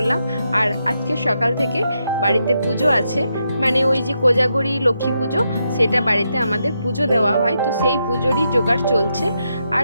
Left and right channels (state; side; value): inverted; both; correlation -0.82